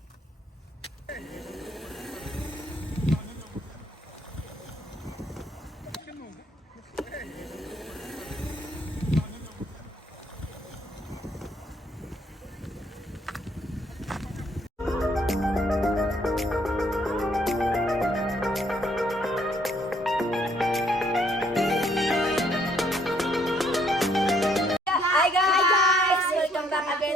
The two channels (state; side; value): normal; both; correlation 0.67